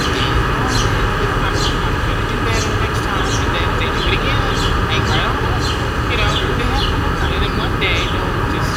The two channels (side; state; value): both; identical; correlation 1.00